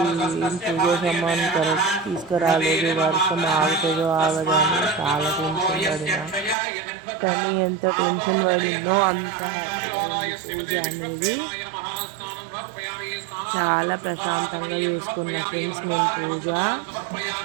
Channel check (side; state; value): left; drops out; at 6.6 s